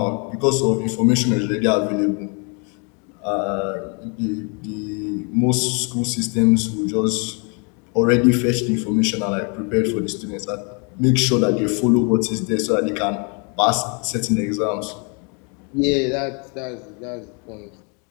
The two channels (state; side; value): quieter; right; 35.3 dB